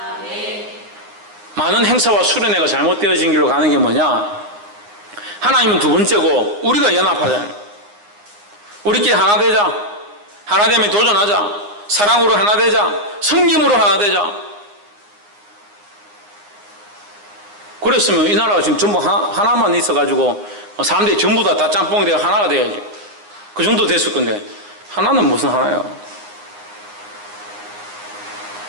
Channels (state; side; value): late; left; 9.7 ms